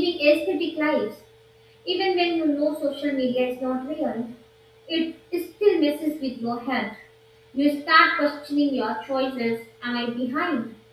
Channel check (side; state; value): both; identical; correlation 1.00